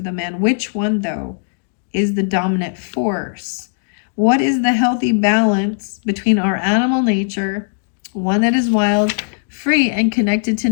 the man. Which one, though, is the dominant force? What is the healthy balance between our animal nature, one that is wild, free, and connected to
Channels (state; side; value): silent; right; digital silence